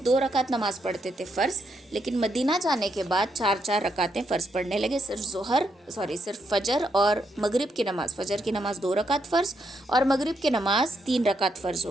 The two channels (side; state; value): both; normal; correlation 0.78